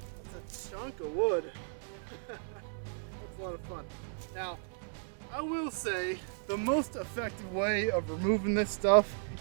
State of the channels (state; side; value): silent; left; digital silence